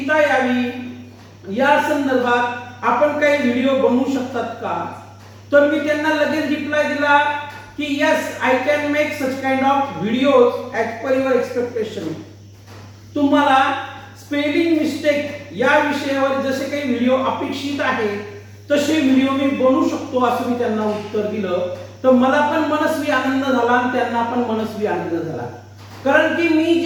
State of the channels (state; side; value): identical; both; correlation 1.00